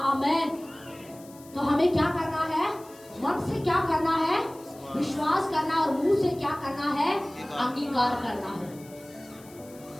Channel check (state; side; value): noise; left; hiss, 23 dB below the sound